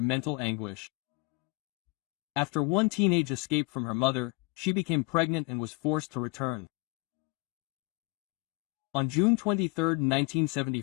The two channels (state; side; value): quieter; right; 26.5 dB